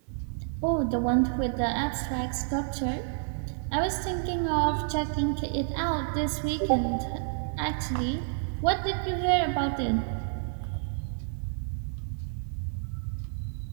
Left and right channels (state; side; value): silent; left; 58 dB below the other